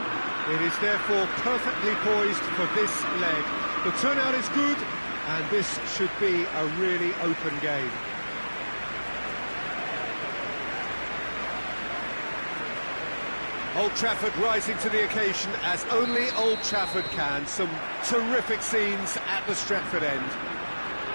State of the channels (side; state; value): both; inverted; correlation -1.00